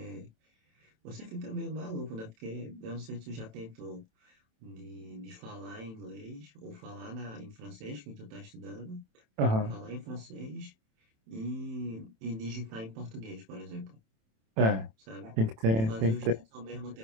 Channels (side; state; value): left; late; 27 ms